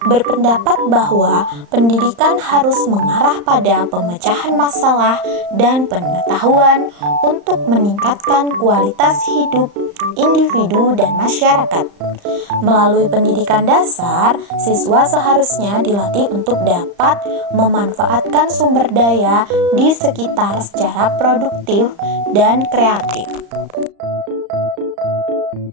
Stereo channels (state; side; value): late; left; 35 ms